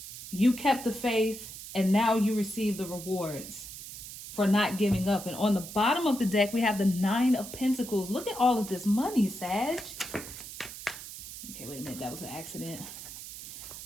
you kept the faith and now you receive the rewards for not giving up. And on the bottom of the deck, we have the 9 of Pentacles. Look at all of this money, Sag. Okay, wait a minute. That was an accident.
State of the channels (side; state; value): right; noise; hiss, 12 dB below the sound